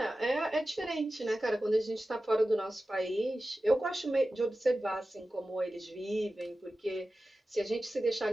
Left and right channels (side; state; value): both; normal; correlation 0.94